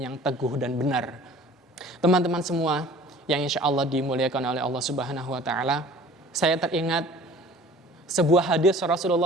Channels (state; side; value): normal; both; correlation 0.47